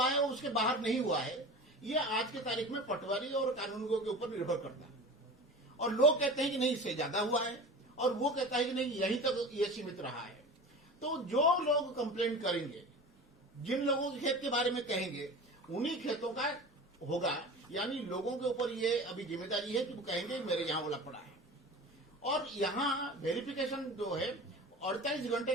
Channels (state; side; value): normal; both; correlation 0.35